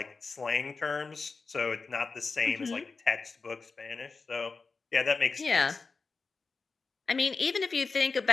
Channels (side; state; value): right; quieter; 4.4 dB